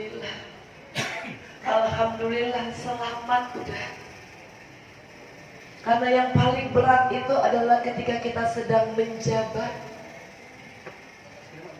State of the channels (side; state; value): both; identical; correlation 1.00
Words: Alhamdulillah selamat udah. Karena yang paling berat itu adalah ketika kita sedang menjabat,